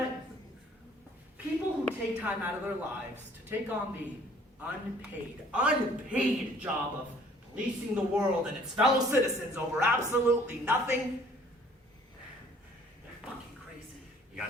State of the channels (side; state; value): both; normal; correlation 0.56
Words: People who take time out of their lives to take on the unpaid job of policing the world and its fellow citizens over absolutely nothing, they're fucking crazy. You